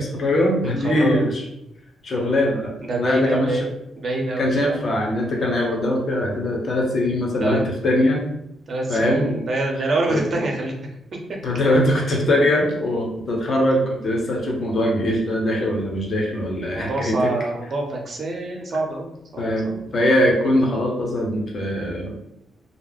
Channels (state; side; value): normal; both; correlation 0.74